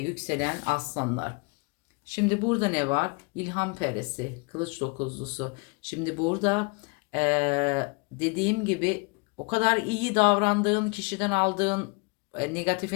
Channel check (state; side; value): quieter; right; 31.1 dB